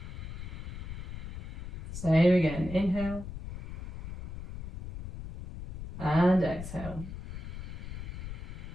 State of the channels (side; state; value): left; noise; rumble, 9 dB below the sound